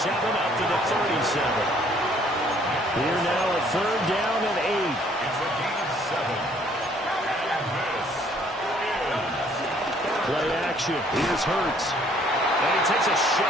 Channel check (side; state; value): both; normal; correlation 0.61